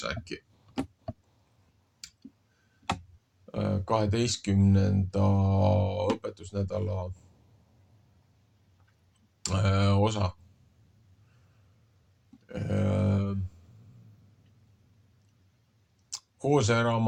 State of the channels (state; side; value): identical; both; correlation 1.00